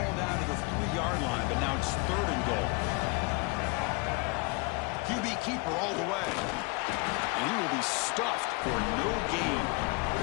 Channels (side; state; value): right; quieter; 28.8 dB